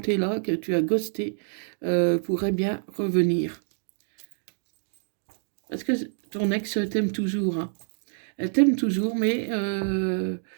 là, que tu as ghosté, pourrait bien revenir. Parce que ton ex t'aime toujours, hein. Elle t'aime toujours, mais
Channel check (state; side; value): silent; left; digital silence